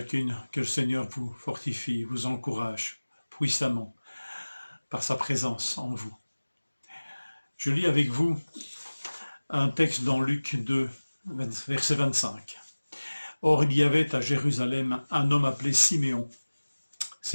que le Seigneur vous fortifie, vous encourage puissamment par sa présence en vous. Je lis avec vous un texte dans Luc 2, verset 25. Or il y avait à Jérusalem un homme appelé Siméon.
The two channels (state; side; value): inverted; both; correlation -1.00